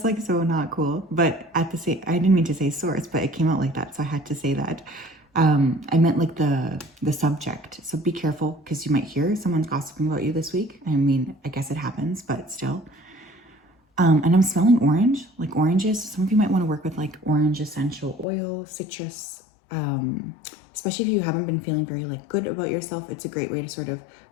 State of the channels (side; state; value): right; drops out; at 18.2 s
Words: like so not cool. But at the same, I didn't mean to say source, but it came out like that. So I had to say that. I meant like the subject. So be careful because you might hear someone's gossiping about you this week. I mean, I guess it happens, but still. And I'm smelling orange, like oranges. Some of you might want to work with like orange essential oil, citrus, especially if you haven't been feeling very like good about yourself. It's a great way to sort of